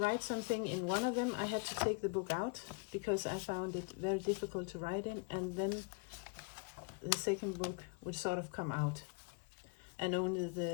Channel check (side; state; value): right; quieter; 32.5 dB